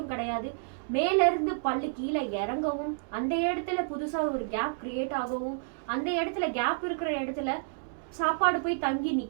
கிடையாது, மேல இருந்து பல்லு கீழே இறங்கவும், அந்த இடத்துல புதுசா ஒரு கேப் கிரியேட் ஆகவும், அந்த இடத்துல கேப் இருக்கிற இடத்துல சாப்பாடு போய் தங்கி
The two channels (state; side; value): silent; left; digital silence